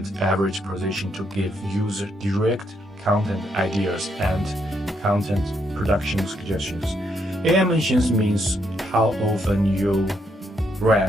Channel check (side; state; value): both; normal; correlation 0.76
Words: average position to give user direct content ideas and content production suggestions. AI mentions means how often your